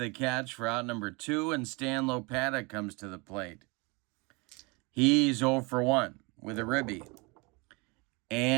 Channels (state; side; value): quieter; left; 28.4 dB